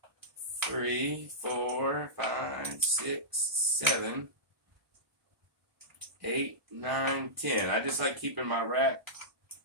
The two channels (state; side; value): late; left; 1.2 ms